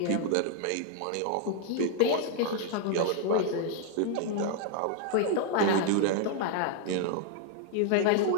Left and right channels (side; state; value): both; different; correlation 0.00